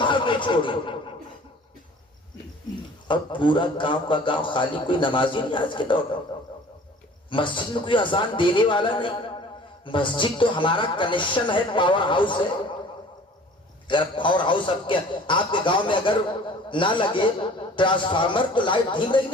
نہیں چھوڑی. اور پورا گاؤں کا گاؤں خالی, کوئی نمازی نہیں آج کے دور میں. مسجد میں کوئی اذان دینے والا نہیں. مسجد تو ہمارا کنیکشن ہے, پاور ہاؤس ہے. اگر پاور ہاؤس آپ کے گاؤں میں اگر نہ لگے ٹرانسفارمر تو لائٹ دھیم رہی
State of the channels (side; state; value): both; normal; correlation 0.48